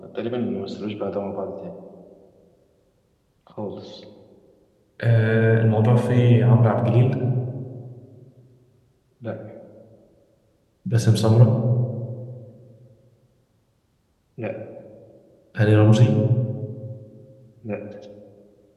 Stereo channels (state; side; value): identical; both; correlation 1.00